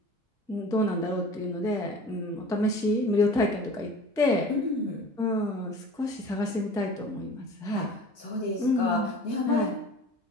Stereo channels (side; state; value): both; normal; correlation 0.41